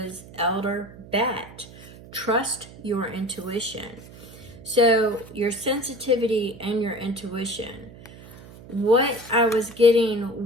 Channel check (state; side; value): noise; right; hum, 18 dB below the sound